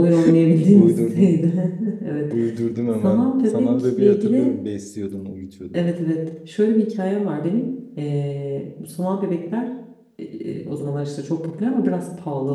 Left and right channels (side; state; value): both; identical; correlation 1.00